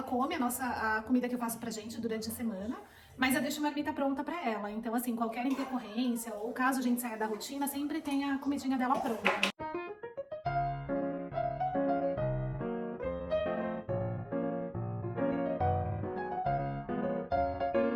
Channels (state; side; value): identical; both; correlation 1.00